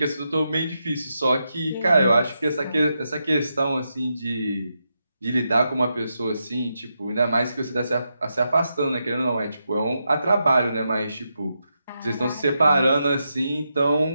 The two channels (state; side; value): inverted; both; correlation -0.85